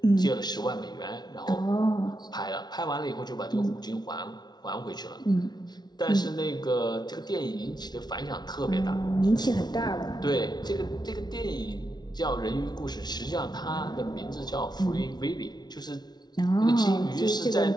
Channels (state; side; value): late; right; 0.20 ms